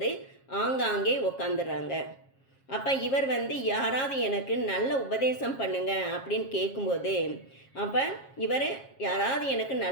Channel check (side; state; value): right; late; 7.4 ms